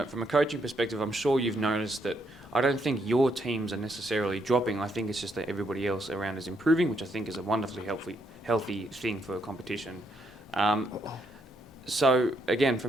coaching perspective, I'm sure you've noticed that I don't think your teams are necessarily dropping. I think it's just that everybody else around is improving, which I think is a wonderfully healthy thing for a competition. So again,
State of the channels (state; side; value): normal; both; correlation 0.75